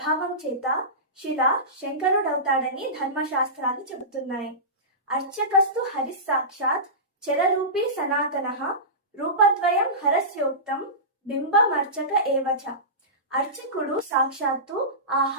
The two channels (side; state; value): both; normal; correlation -0.20